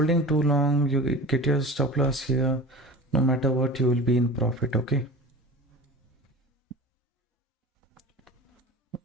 too long, you get your stop loss here. No matter what, you will be in profit. Okay.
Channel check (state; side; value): normal; both; correlation 0.36